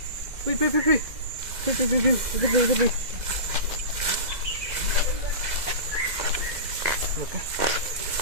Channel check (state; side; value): late; left; 2.1 ms